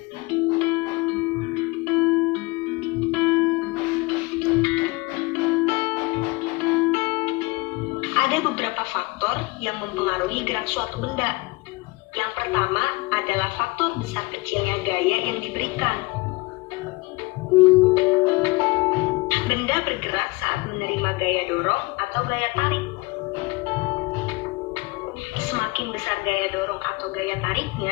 Ada beberapa faktor yang mempengaruhi gerak suatu benda. Yang pertama adalah faktor besar kecilnya gaya yang diberikan. Benda bergerak saat menerima gaya dorong atau gaya tarik. Semakin besar gaya dorong atau gaya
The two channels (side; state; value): right; quieter; 23.9 dB